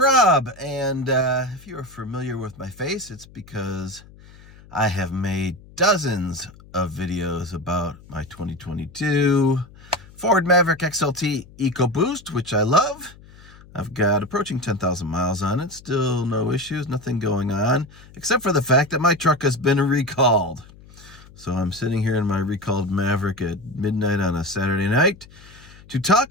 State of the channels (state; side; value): noise; left; hum, 22 dB below the sound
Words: and if you're familiar with my face, it's because I have made dozens of videos about my 2022 Ford Maverick XLT EcoBoost, which I love. I've got approaching 10,000 miles on it, still no issues, nothing going on, except for the fact that my truck has been recalled. So I'm sitting here in my recalled Maverick at midnight on a Saturday night to